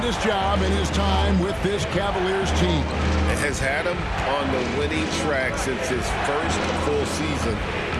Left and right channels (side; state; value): both; identical; correlation 1.00